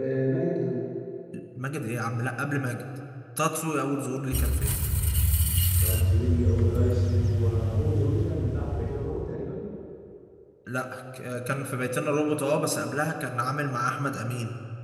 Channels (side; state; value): both; identical; correlation 1.00